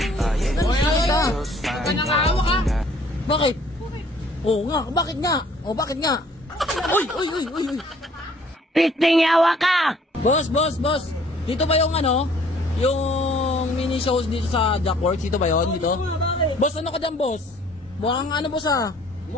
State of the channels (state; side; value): normal; both; correlation 0.58